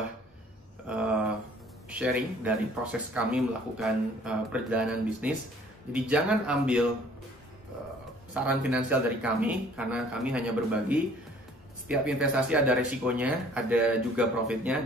sharing dari proses kami melakukan perjalanan bisnis. Jadi jangan ambil saran finansial dari kami, karena kami hanya berbagi. Setiap investasi ada resikonya, ada juga profitnya,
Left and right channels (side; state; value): both; normal; correlation 0.55